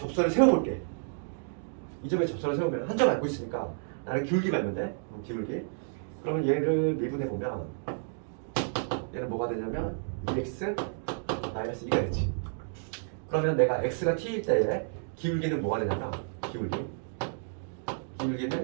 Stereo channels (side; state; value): left; silent; digital silence